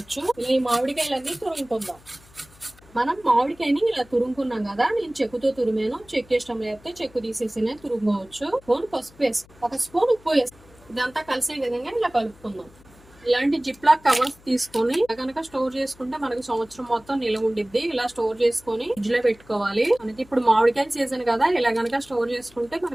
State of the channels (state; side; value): noise; left; hum, 26 dB below the sound